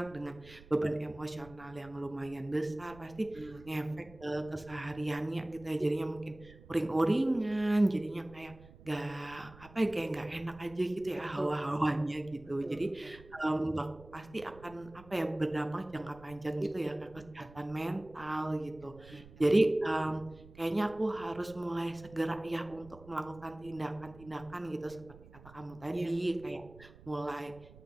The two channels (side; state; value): right; noise; rumble, 20 dB below the sound